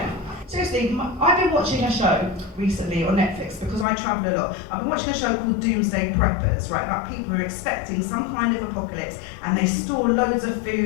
Seriously, I've been watching a show recently on Netflix because I travel a lot. I've been watching a show called Doomsday Preppers, right, about people who are expecting some kind of apocalypse, and they store loads of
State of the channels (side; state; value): right; drops out; at 3.9 s